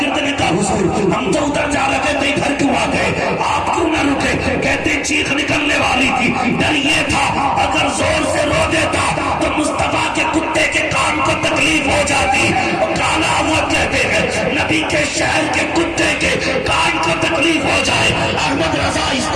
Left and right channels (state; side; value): identical; both; correlation 1.00